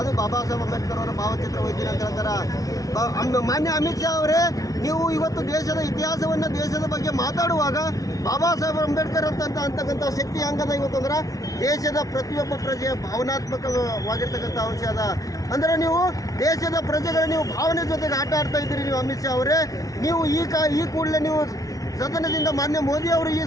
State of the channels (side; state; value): right; late; 0.17 ms